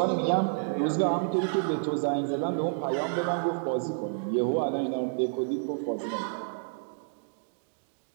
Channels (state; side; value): silent; left; digital silence